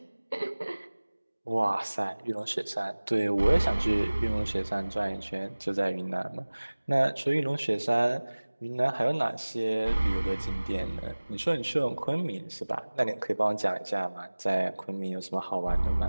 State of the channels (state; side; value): inverted; both; correlation -1.00